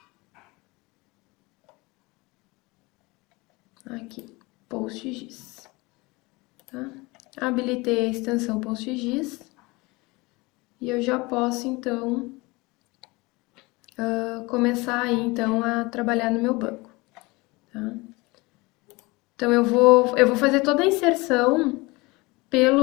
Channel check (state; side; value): quieter; right; 23.9 dB